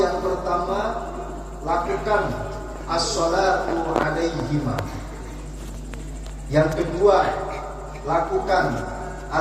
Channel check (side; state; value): both; identical; correlation 1.00